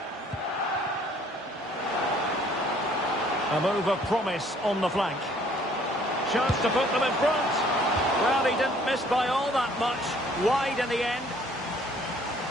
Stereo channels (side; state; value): both; normal; correlation 0.59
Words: A move of promise on the flank. Chance to put them in front. Well, he didn't miss by all that much. Wide in the end.